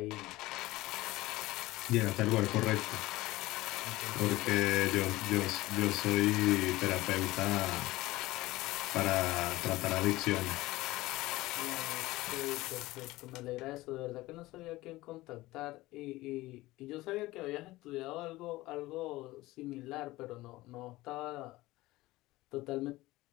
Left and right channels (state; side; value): quieter; right; 18.7 dB